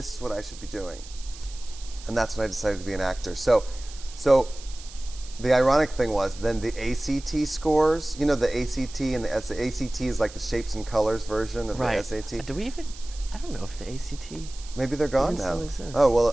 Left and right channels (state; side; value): noise; right; hiss, 17 dB below the sound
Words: is what I should be doing. And that's when I decided to be an actor. So the ironic thing was then the ACT scores, the ACT and the ACT is like the shapes and colors version of the SAT. I don't know if the ACT. Maybe they're gone now. Oh, well,